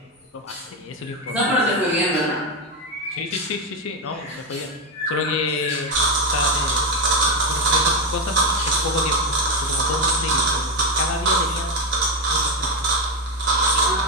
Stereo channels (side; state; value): both; normal; correlation 0.10